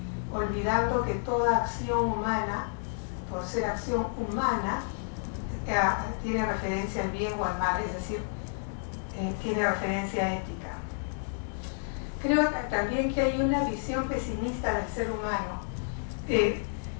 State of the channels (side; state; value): right; silent; digital silence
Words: olvidando que toda acción humana, por ser acción humana, tiene referencia al bien o al mal, es decir, tiene referencia ética. Creo también que hay una visión pesimista del ser humano,